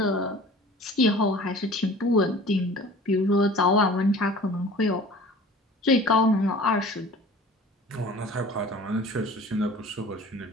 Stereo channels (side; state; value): both; normal; correlation 0.44